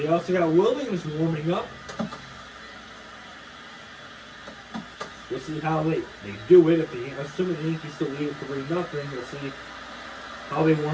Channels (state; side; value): identical; both; correlation 1.00